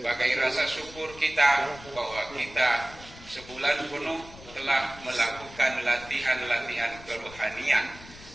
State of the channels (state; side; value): noise; left; rumble, 18 dB below the sound